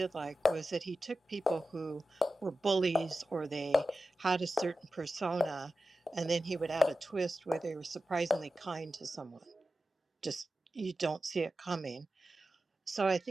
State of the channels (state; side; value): normal; both; correlation 0.93